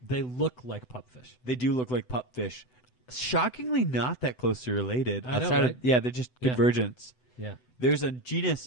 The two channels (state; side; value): late; right; 8.0 ms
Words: They look like pupfish. They do look like pupfish. Shockingly not that closely related. I know, outside right? of, yeah, they're just Yeah. convergence. Yeah. There's a